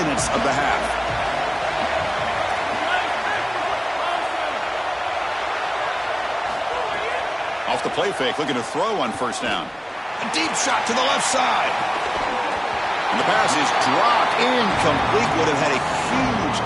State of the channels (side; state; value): both; identical; correlation 1.00